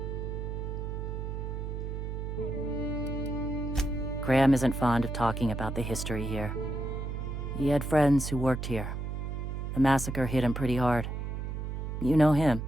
Graham isn't fond of talking about the history here. He had friends who worked here. The massacre hit him pretty hard. You know him.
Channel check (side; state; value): right; noise; hum, 4 dB below the sound